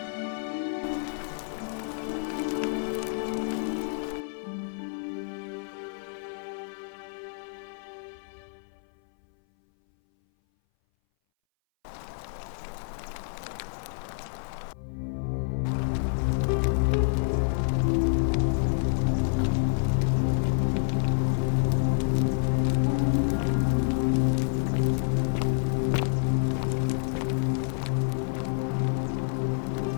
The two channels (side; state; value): right; silent; 59 dB below the other